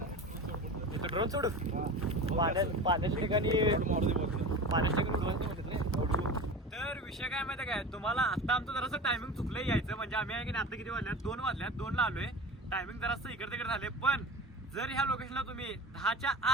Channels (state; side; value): normal; both; correlation 0.32